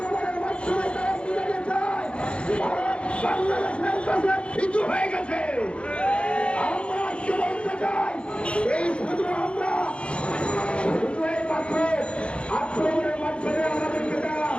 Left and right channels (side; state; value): right; late; 0.058 ms